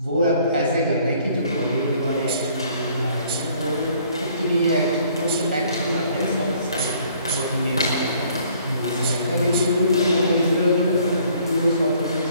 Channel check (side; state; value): both; inverted; correlation -0.60